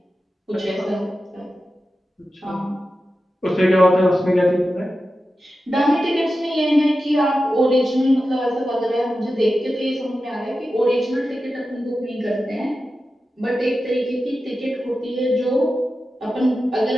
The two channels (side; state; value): both; normal; correlation 0.92